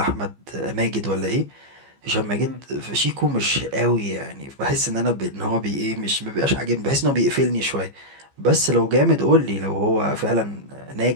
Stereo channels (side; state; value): left; late; 15 ms